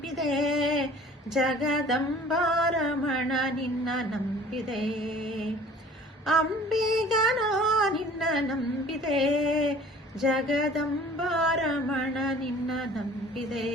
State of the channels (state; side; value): normal; both; correlation 0.49